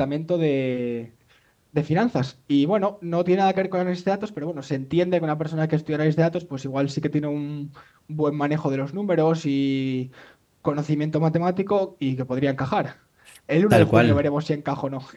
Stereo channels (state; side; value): identical; both; correlation 1.00